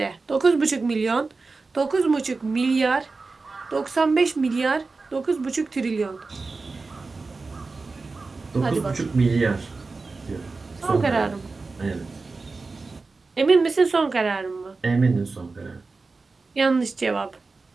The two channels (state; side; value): quieter; left; 3.9 dB